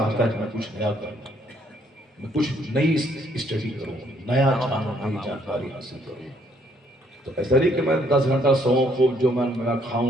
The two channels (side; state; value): both; normal; correlation 0.67